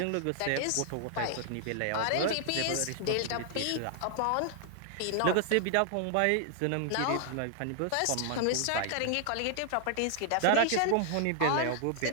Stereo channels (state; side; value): different; both; correlation 0.00